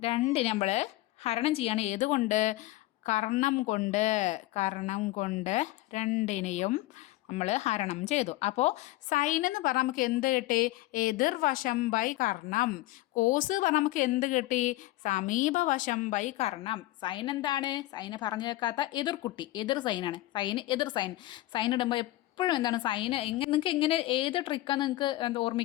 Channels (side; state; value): right; quieter; 17.3 dB